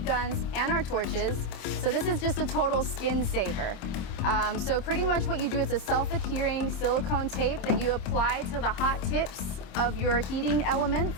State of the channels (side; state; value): right; late; 27 ms